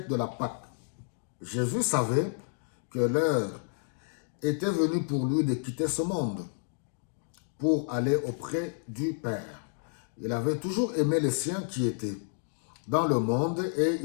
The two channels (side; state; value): right; silent; digital silence